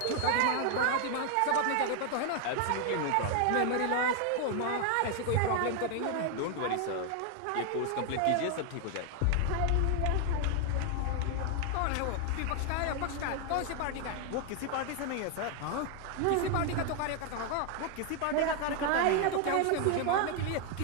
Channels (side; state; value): both; different; correlation 0.00